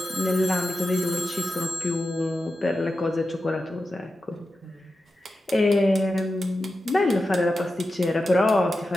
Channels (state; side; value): normal; both; correlation 0.91